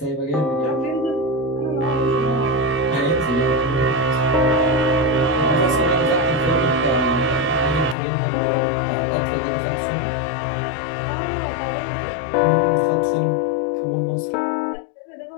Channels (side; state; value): right; drops out; at 8.0 s